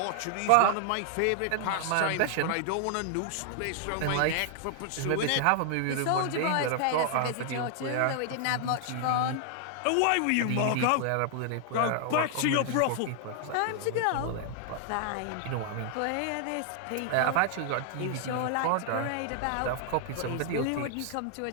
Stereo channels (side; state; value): both; different; correlation 0.00